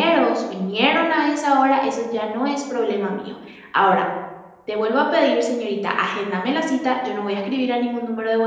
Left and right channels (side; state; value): both; identical; correlation 1.00